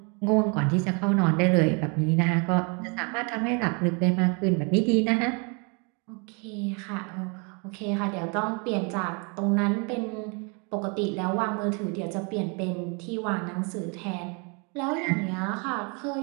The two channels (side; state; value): left; quieter; 33.8 dB